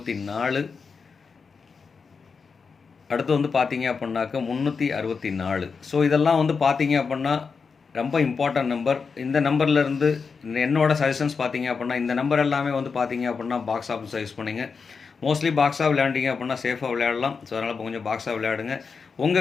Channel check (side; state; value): right; quieter; 5.3 dB